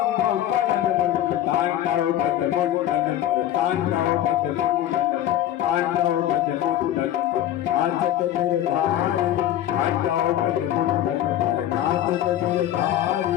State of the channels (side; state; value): right; quieter; 12.1 dB